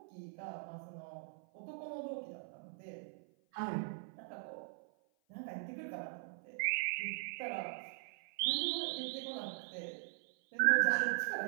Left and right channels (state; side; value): silent; left; 51 dB below the other